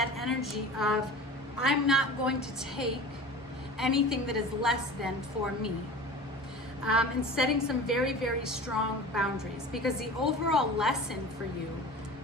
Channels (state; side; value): normal; both; correlation 0.37